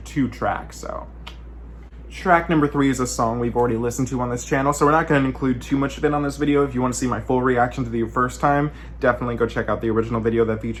2 tracks, so. Track number 3 is a song we've already listened to on this channel, so we're not going to include too much of it on this video. If you want to see my full reaction to the first time, definitely go check out the original video that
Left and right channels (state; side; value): identical; both; correlation 1.00